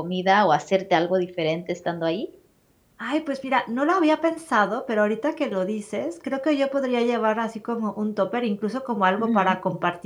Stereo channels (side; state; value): both; identical; correlation 1.00